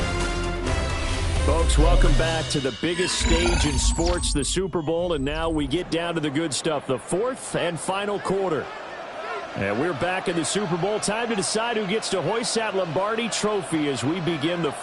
Folks, welcome back to the biggest stage in sports, the Super Bowl, and now we get down to the good stuff, the 4th and final quarter. And we're back in the Super Bowl. Time to decide who gets to hoist that Lombardi trophy as we begin the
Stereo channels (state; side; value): identical; both; correlation 1.00